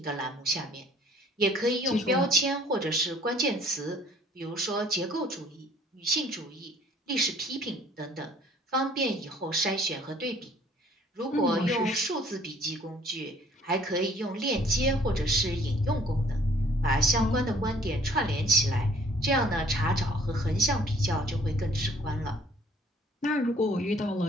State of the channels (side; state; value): both; normal; correlation 0.57